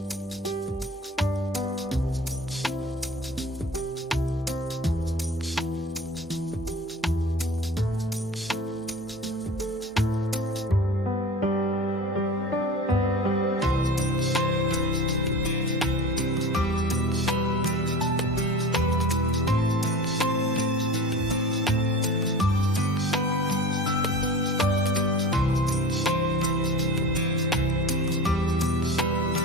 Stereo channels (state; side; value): normal; both; correlation 0.36